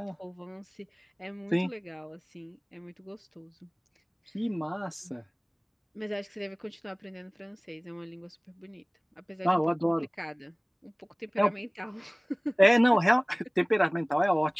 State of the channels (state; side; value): identical; both; correlation 1.00